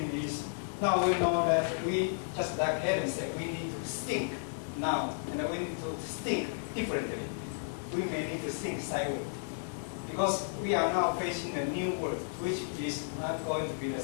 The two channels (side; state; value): right; silent; digital silence